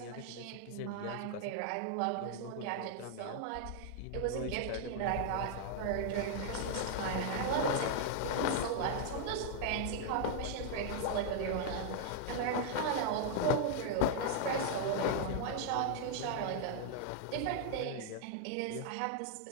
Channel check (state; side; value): different; both; correlation -0.01